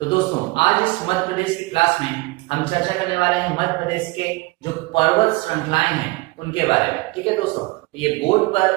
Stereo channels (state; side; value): quieter; left; 23.0 dB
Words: तो दोस्तों, आज इस मध्य प्रदेश की क्लास में हम चर्चा करने वाले हैं मध्य प्रदेश के जो पर्वत श्रृंखलाएं हैं उनके बारे में। ठीक है दोस्तों, ये बोर्ड